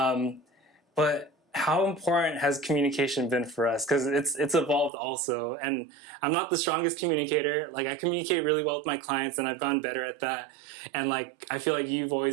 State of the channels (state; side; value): drops out; left; at 4.9 s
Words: But how important has communication been for us? Because it's evolved also. And I'm not the strongest communicator. Like, I communicate really well with my clients, and I've gotten better at that. And like, I feel like you've